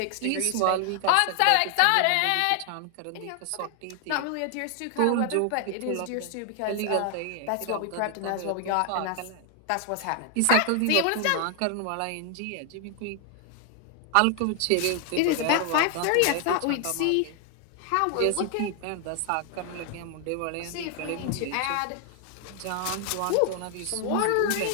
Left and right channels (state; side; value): different; both; correlation 0.00